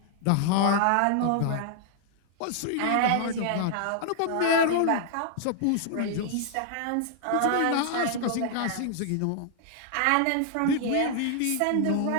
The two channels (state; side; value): different; both; correlation 0.00